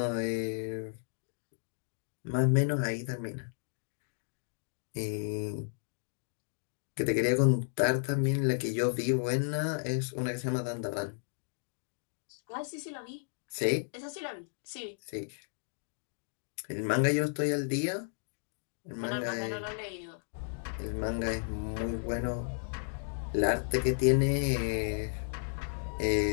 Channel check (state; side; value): silent; right; digital silence